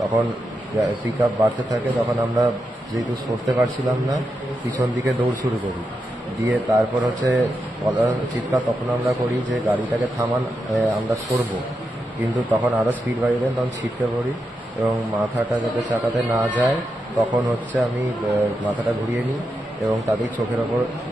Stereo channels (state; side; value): normal; both; correlation 0.86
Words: তখন পিক আপ বাড়তে থাকে, তখন আমরা যেহেতু সরতে পারছিলাম না, পিছন দিকে দৌড় শুরু করি। দিয়ে তারপর চিৎকার তখন আমরা করি যে গাড়িটাকে থামান, আমরা সরবো। কিন্তু তখন আরও স্পিড বাড়িয়ে দেন, তখন ছিটকে পড়ি এবং মাথাটা যাতে চাকাতে না যায় তখন আমি মাথাটা ঘুরিয়ে নিই এবং তাদের চোখের ওপর